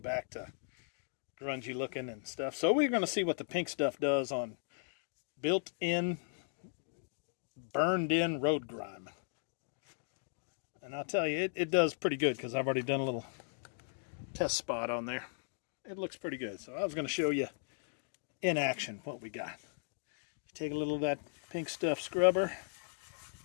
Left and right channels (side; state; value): right; silent; digital silence